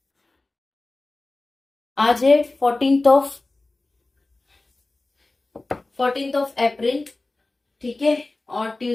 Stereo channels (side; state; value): right; quieter; 3.1 dB